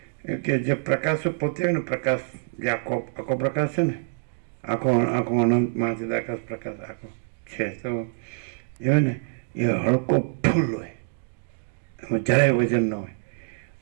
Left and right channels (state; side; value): silent; left; digital silence